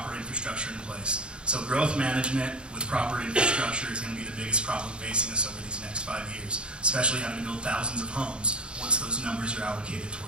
infrastructure in place. So growth management with proper infrastructure is going to be the biggest problem facing us over these next 5 years, especially having to build thousands of homes once those numbers are allocated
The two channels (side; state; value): left; late; 0.054 ms